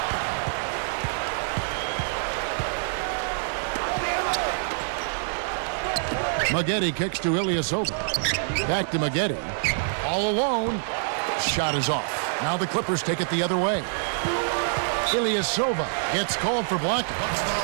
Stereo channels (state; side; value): silent; left; 57 dB below the other